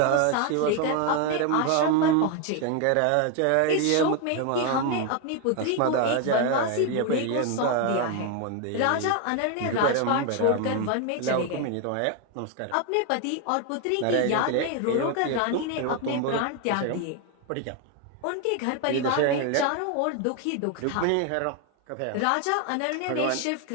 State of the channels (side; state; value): both; different; correlation 0.01